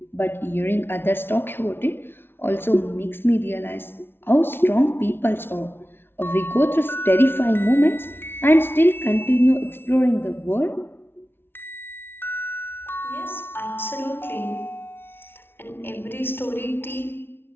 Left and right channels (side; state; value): right; late; 0.11 ms